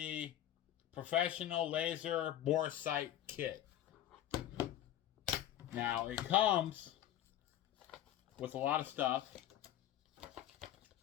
Professional Laser Bore Sight Kit. Now it comes with a lot of stuff.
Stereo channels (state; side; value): quieter; right; 12.2 dB